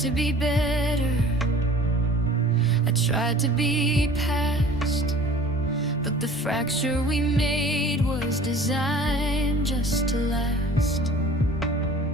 be better, I tried to be past, but the fracture we made was designed just to last.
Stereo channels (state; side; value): normal; both; correlation 0.46